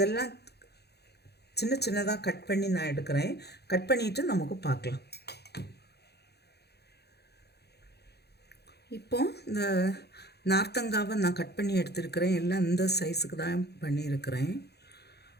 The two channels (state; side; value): late; right; 0.48 ms